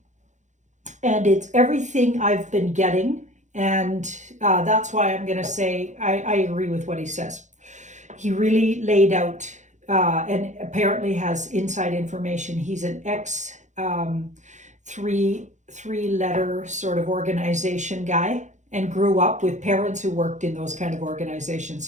And it's everything I've been getting. And that's why I'm going to say I agree with what he says. He really laid out and apparently has inside information. He's an ex three-letter sort of organization guy and grew up with parents who worked in those kind of organizations.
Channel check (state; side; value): late; left; 0.35 ms